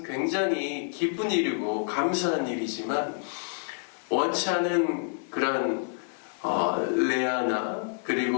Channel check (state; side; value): silent; right; digital silence